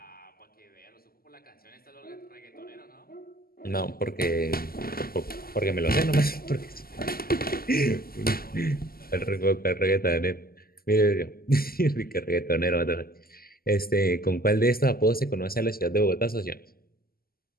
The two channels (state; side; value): late; right; 0.43 ms